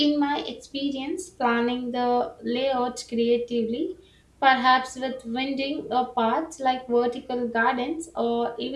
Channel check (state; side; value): identical; both; correlation 1.00